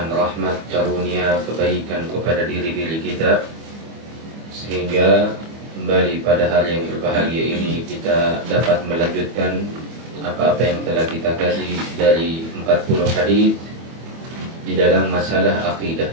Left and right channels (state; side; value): late; left; 25 ms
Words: rahmat, karunia, kebaikan kepada diri-diri kita, sehingga kembali pada hari yang berbahagia ini kita dapat melanjutkan apa-apa yang telah kita kaji dari 40 hadis di dalam masalah akidah.